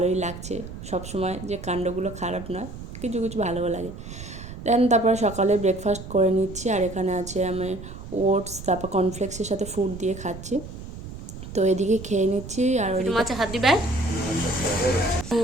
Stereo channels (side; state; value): right; noise; rumble, 12 dB below the sound